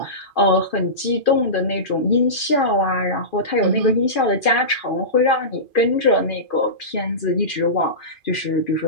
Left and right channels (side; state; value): right; late; 2.4 ms